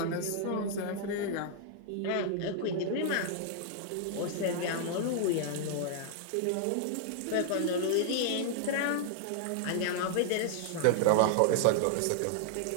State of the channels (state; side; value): different; both; correlation -0.01